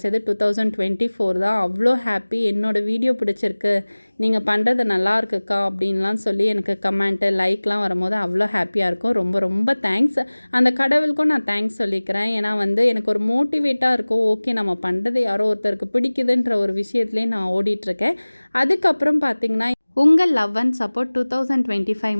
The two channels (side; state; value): both; inverted; correlation -1.00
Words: 2024 தான். அவ்வளோ ஹாப்பி. என்னோடய வீடியோ பிடிச்சிருக்கு, நீங்கள் பண்ணுறது நல்லா இருக்குக்கா அப்படின்லாம் சொல்லி எனக்கு கமெண்ட்டு லைக்லாம் வரும்போது அவ்வளோ ஹாப்பியாக இருக்கும். ரொம்ப ரொம்ப தேங்க்ஸ். அந்த கடவுளுக்கும் நான் தேங்க்ஸ் சொல்லிக்கிறேன். ஏன்னா எனக்கு ஒரு மோட்டிவேட்டாக இருக்கும். ஓகே, நம்ம பண்ணுறது யாரோ ஒருத்தருக்கு பிடிக்குதுன்ற ஒரு விஷயத்துலேயே நான் ஓடிட்டுருக்கேன். அதுக்கப்புறம் பார்த்திங்கன்னா உங்கள் லவ் அண்ட் சப்போர்ட் 2025